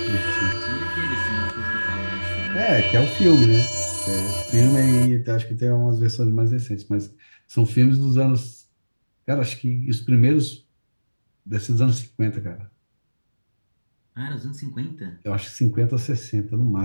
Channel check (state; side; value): inverted; both; correlation -1.00